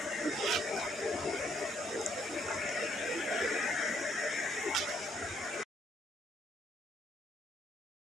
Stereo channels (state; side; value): normal; both; correlation 0.69